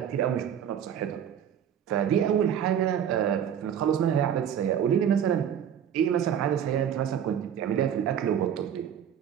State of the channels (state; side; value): quieter; left; 9.1 dB